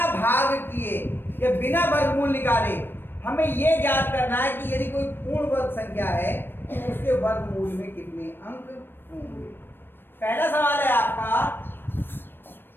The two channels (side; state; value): right; late; 0.098 ms